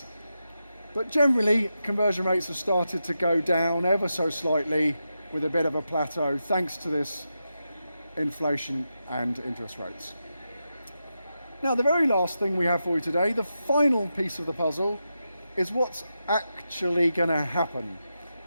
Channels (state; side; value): inverted; both; correlation -0.88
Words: But generally, conversion rates have started to go down ever so slightly with a bit of a plateau, thanks to this inflation and interest rates. Now, the very last thing we have for you today, the final piece of the puzzle, is what's actually going to happen